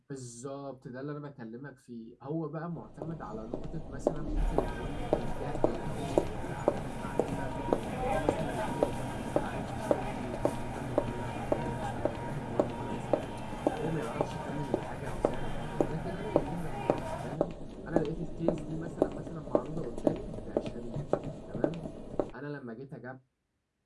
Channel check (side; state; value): both; identical; correlation 1.00